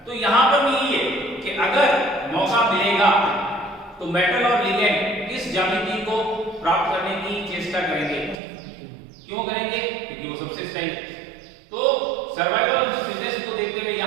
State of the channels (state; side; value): drops out; left; at 8.3 s